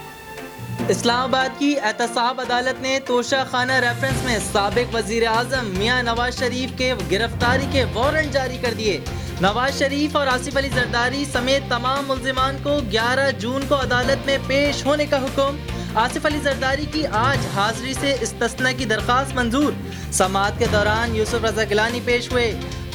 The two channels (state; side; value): identical; both; correlation 1.00